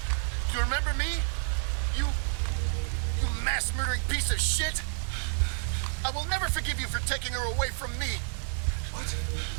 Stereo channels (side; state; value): left; silent; digital silence